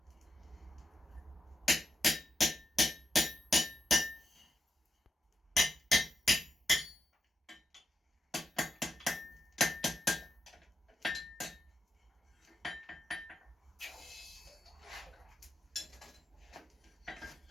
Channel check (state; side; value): normal; both; correlation 0.85